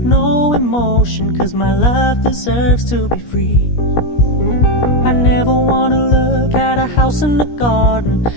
no emotion, 'cause my love deserves to be free. I never wanna look at a house in the garden,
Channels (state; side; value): late; right; 17 ms